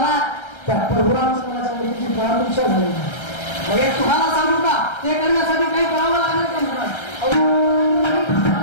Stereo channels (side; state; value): right; late; 1.3 ms